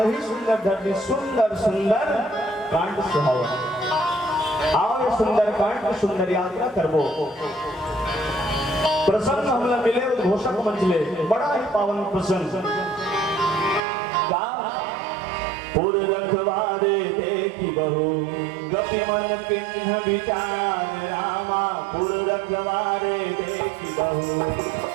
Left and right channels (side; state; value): left; drops out; at 13.8 s